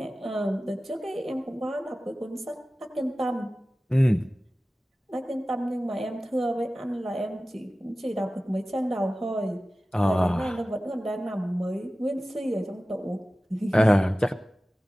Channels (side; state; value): both; normal; correlation 0.96